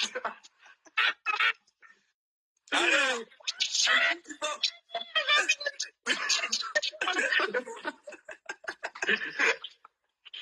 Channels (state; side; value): identical; both; correlation 1.00